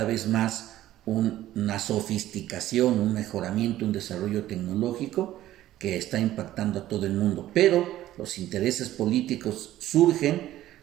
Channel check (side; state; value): left; quieter; 14.0 dB